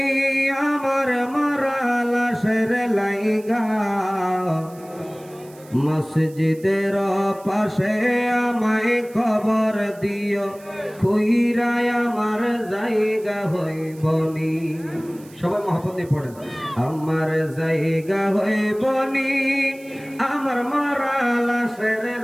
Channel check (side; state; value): right; noise; hiss, 24 dB below the sound